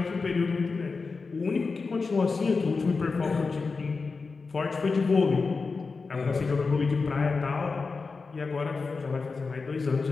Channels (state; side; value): quieter; right; 4.4 dB